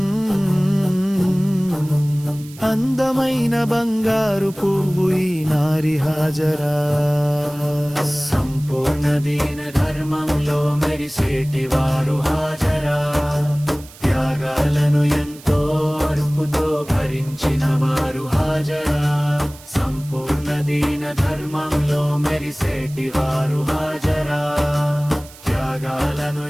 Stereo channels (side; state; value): right; noise; hiss, 20 dB below the sound